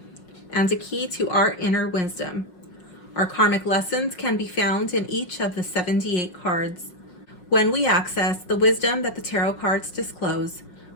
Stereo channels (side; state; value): right; late; 5.5 ms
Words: and a key to our inner wisdom. Our karmic lessons can be found in each of the 78 cards. When we access the wisdom that the tarot cards disclose,